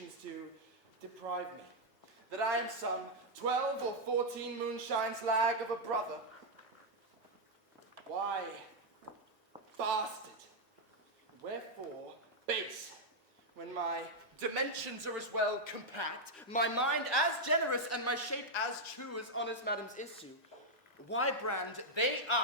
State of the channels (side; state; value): both; normal; correlation -0.02